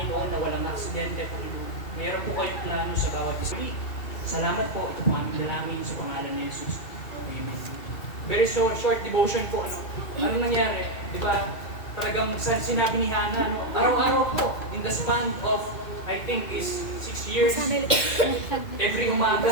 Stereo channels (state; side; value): late; right; 2.3 ms